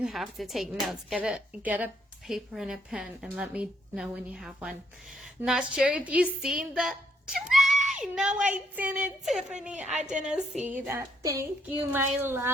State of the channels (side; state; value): both; normal; correlation 0.72